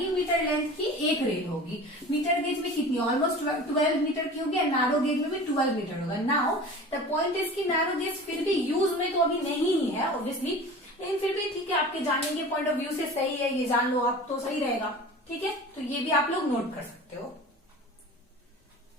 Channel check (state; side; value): normal; both; correlation 0.38